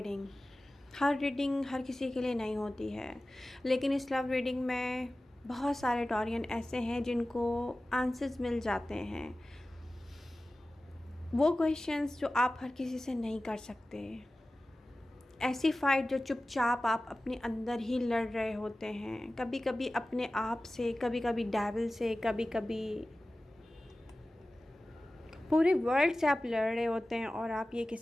हर रीडिंग हर किसी के लिए नहीं होती है, लेकिन इस लव रीडिंग में बहुत सारे टॉरियन ऐसे हैं जिनको आंसर्स मिल जाते हैं। वो क्वेश्चंस जो आप हर किसी से नहीं कर सकते, ऐसी फाइट जो चुपचाप आप अपने अंदर ही लड़ रहे होते हैं, कभी कभी अपने आप से, कभी कभी डेविल से, कभी कभी पूरे वर्ल्ड से आप लड़ रहे होते हैं और आप ये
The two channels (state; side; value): normal; both; correlation 0.96